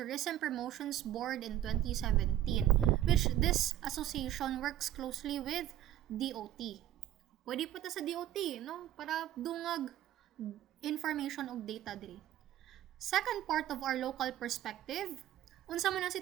Promotions Board in 2017, which this association works closely with DOT. Pwede po ta sa DOT, no? Para dungag information og data diri. Second part of our local perspective, unsa man ang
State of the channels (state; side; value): quieter; left; 12.6 dB